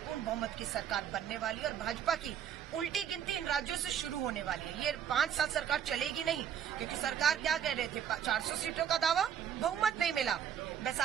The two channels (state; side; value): quieter; left; 8.9 dB